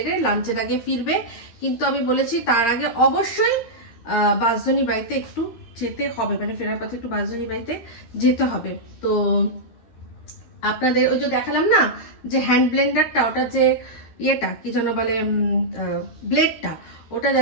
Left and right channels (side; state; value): right; late; 13 ms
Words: লাঞ্চের আগে ফিরবে, কিন্তু আমি বলেছি তার আগে অবশ্যই বাঁশধনী বাড়িতে একটু যেতে হবে, মানে ফেরার পথে একটু বাঁশধনী বাড়িতে যেতে হবে। তো আপনাদের ওই যে দেখালাম না যে হ্যান্ড ব্লেন্ডারটা, ওটা যে ইয়েটা কি যেন বলে, ব্লেডটা, ওটা